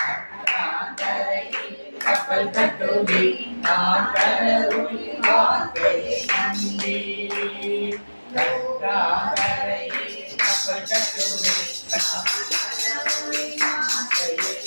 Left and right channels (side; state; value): both; inverted; correlation -1.00